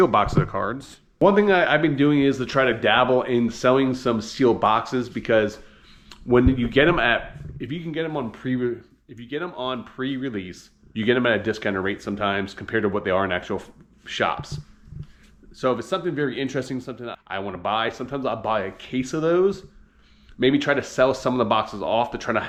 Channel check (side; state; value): both; identical; correlation 1.00